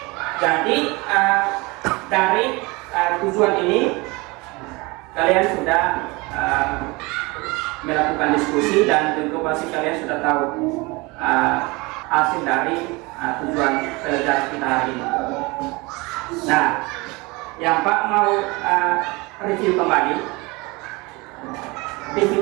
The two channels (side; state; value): left; quieter; 24.9 dB